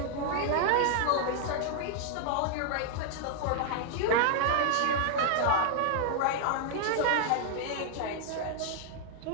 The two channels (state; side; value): different; both; correlation 0.00